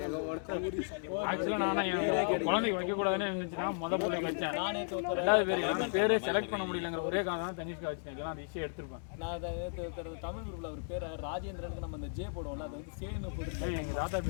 கௌரி ஆக்சுவலா நானா என் குழந்தைக்கு வைக்க கூடாதுன்னு இருந்துச்சுன்னா முத பிள்ளைக்கு வச்சேன். ரெண்டாவது பேர் பேரே செலக்ட் பண்ண முடியலங்கிற ஒரே காரணம் தான் தனிஷ்கா வச்சேன். இல்லைன்னா அந்த இஷ்யே எடுத்திருப்பேன். நான் தமிழ் குரூப்ல ஒரு பேர் ராஜேந்திரனுக்கு நம்ம அந்த ஜே போடுவோம்ல அது வந்து சேன்னு போட்டு எங்க தாத்தா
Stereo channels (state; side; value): silent; right; digital silence